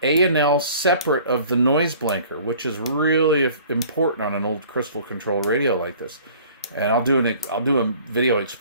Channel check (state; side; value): inverted; both; correlation -0.50